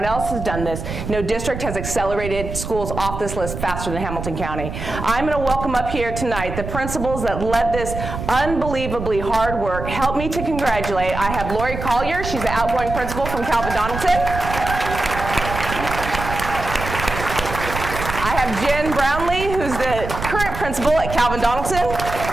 else has done this. No district has accelerated schools off this list faster than Hamilton County. I'm going to welcome up here tonight the principals that led this unbelievably hard work. Help me to congratulate. I have Lori Collier. She's the outgoing principal from Calvin Donaldson. I have Jen Brownlee, who's the current principal at Calvin Donaldson.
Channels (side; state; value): right; noise; rumble, 7 dB below the sound